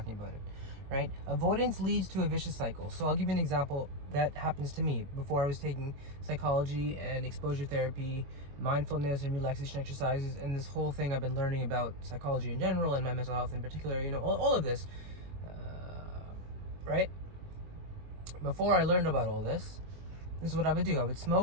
about it, right? Avoidance leads to a vicious cycle. So I'll give you an example that happens to me before I was taking psychology and exposure therapy, mindfulness and relaxation exercises, and this whole thing I've been learning about psychology in general and my mental health in particular, all of this, right? Before I learned about all this is what I would do. I would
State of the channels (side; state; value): left; late; 22 ms